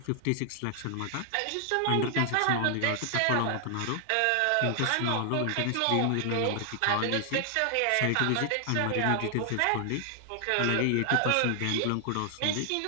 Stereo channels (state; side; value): different; both; correlation 0.00